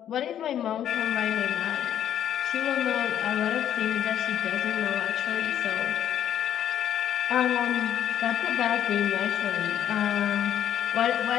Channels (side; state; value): right; quieter; 10.4 dB